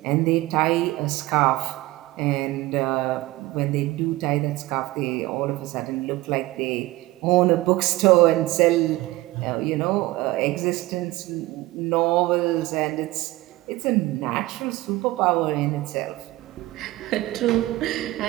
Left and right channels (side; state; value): left; quieter; 18.6 dB